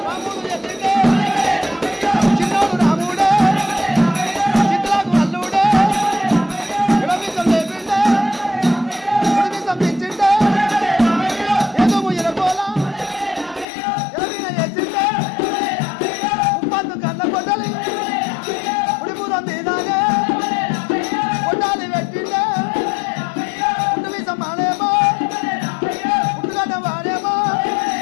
చిన్నోడు రాముడే చిత్తులకు అల్లుడే విడమిసం లేపిండే విడమిసం తెచ్చిండే ఏదో ఎరగోల ఎరవిన వేసిండే ఉప్పందు కన్న కొట్టలి ఉడిపురం మీదానే కొట్టాలి పెట్టిండే ఉడిమిసం మానేమో ఉట్టుగడ్డ వాడేమో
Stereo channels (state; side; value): drops out; right; at 13.7 s